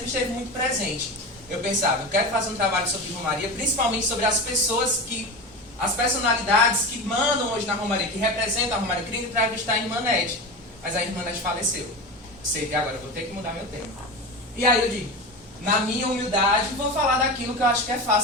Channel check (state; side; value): normal; both; correlation 0.25